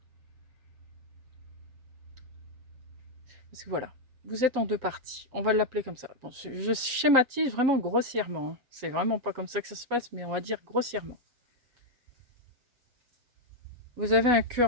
Parce que voilà, vous êtes en 2 parties. On va l'appeler comme ça. Bon, je schématise vraiment grossièrement. Hein. C'est vraiment pas comme ça que ça se passe, mais on va dire grossièrement. Vous avez un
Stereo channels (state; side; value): late; left; 7.7 ms